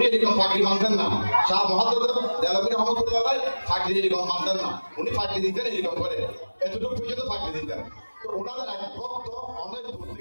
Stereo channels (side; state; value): both; inverted; correlation -1.00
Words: এরকম পাগড়ি মানতেন না। শাহ মুহাদ্দিস দেহলভী রহমাতুল্লাহ আলাইহি পাগড়ি এরকম মানতেন না। উনি পাগড়ি দিতেন এরকম করে, এতটুকু পর্যন্ত পাগড়ি দিতেন। তো ওনাদের এক ভক্ত অনেক দূর